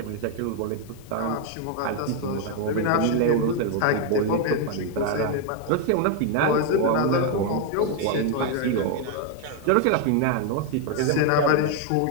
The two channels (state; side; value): different; both; correlation 0.01